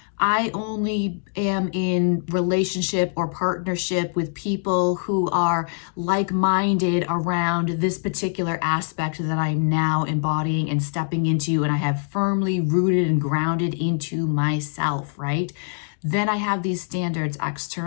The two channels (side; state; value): right; silent; 63 dB below the other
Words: I only am in relationship or partnership with people who are like-minded around this particular aspect that I'm now embodying and stepping into, and I have firmly rooted and grounded into myself, right? Then I have these standards